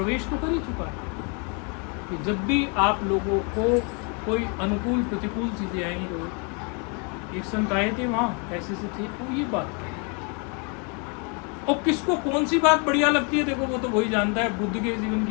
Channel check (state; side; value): quieter; right; 35.3 dB